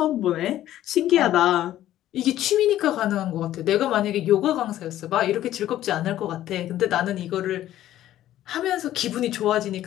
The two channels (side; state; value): right; quieter; 13.1 dB